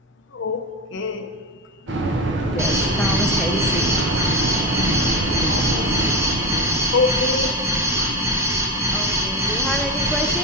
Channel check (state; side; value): normal; both; correlation 0.18